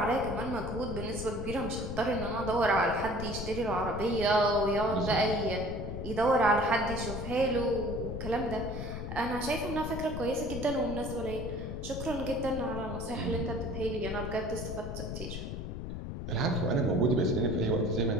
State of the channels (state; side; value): noise; left; rumble, 6 dB below the sound